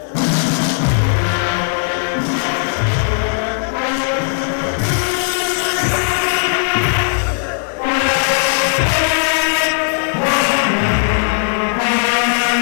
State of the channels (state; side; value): silent; right; 63 dB below the other